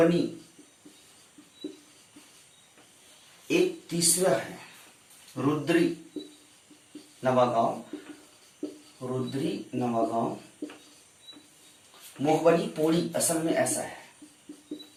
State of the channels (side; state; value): both; identical; correlation 1.00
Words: एक तीसरा है रुद्री नवागांव, रुद्री नवागांव। मोहबनी पोड़ी असल में ऐसा है,